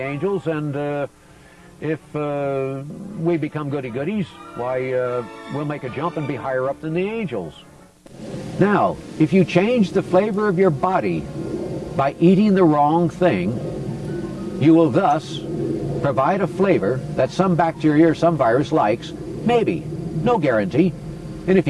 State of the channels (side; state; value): both; identical; correlation 1.00